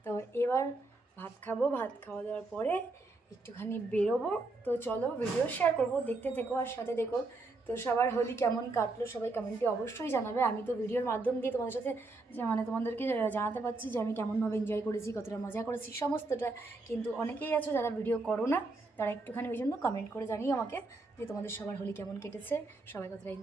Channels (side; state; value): left; quieter; 3.3 dB